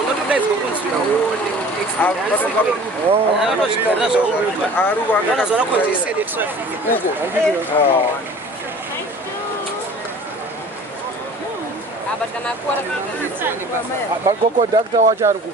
kunzi unoona konzesede traffic. Conductor wacho ari ku.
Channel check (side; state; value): both; normal; correlation 0.45